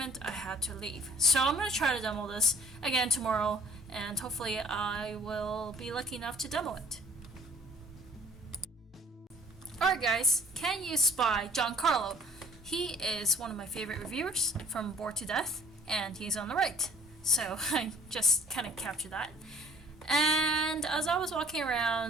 I had to leave. So I'm going to try to demo this again tomorrow, and hopefully I will be lucky enough to demo it. Alright guys, can you spy Giancarlo? He is one of my favorite reviewers from Bored to Death, and he's on the right. So I just kind of captured that. And as I was walking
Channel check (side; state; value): both; normal; correlation 0.54